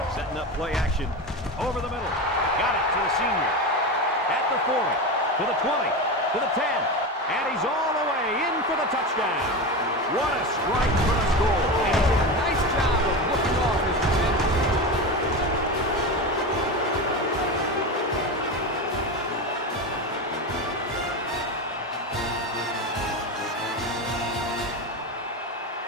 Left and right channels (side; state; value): both; normal; correlation 0.21